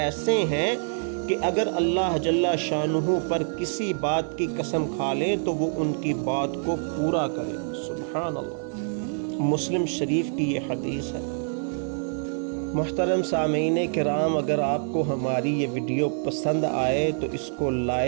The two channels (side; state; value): left; silent; 57 dB below the other